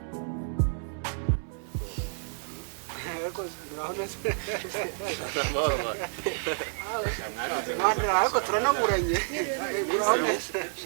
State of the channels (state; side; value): silent; left; 58 dB below the other